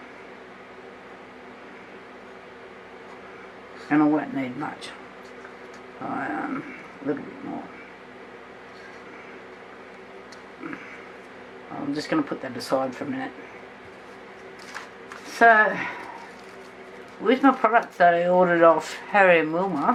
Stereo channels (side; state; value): both; identical; correlation 1.00